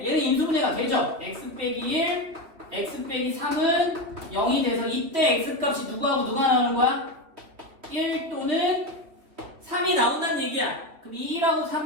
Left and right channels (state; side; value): late; left; 3.3 ms